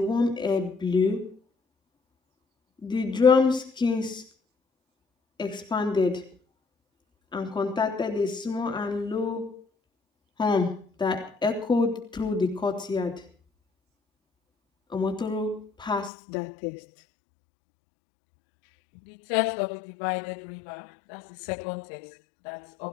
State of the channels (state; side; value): drops out; right; at 16.1 s